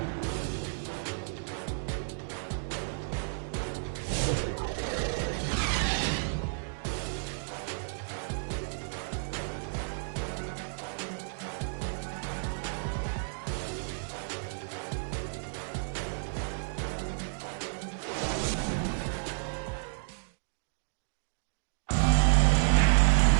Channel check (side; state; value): left; silent; digital silence